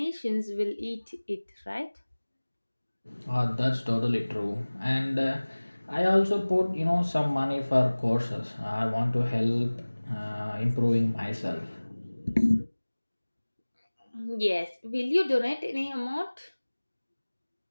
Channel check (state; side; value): inverted; both; correlation -1.00